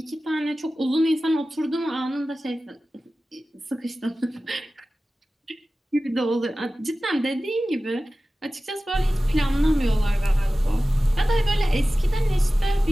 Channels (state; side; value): normal; both; correlation 0.96